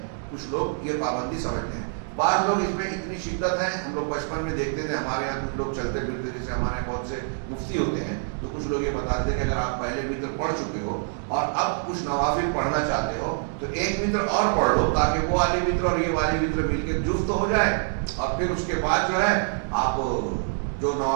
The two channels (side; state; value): left; silent; digital silence